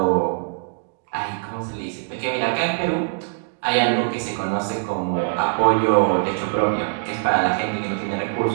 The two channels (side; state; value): left; silent; digital silence